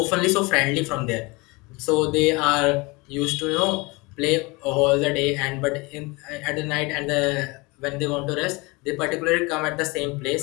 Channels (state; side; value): quieter; right; 25.5 dB